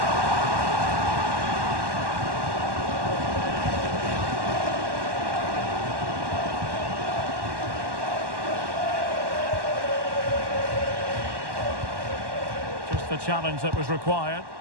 Just the challenge that was required.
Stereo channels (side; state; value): left; late; 1.1 ms